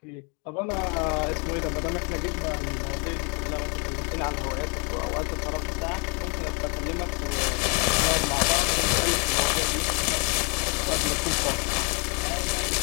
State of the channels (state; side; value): quieter; right; 34.8 dB